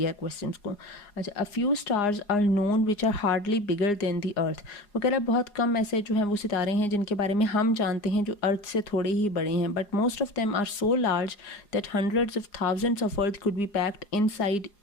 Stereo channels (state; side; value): late; right; 4.8 ms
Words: है क्वेश्चंस को। अच्छा, a few stars are known which are hardly bigger than the earth. वो कह रहा है बहुत कम ऐसे जो हैं वो सितारे हैं जिनके बारे में हम जानते हैं जो अर्थ से थोड़े ही बड़े हैं, but most of them are so large that hundreds of thousands of earth could be packed inside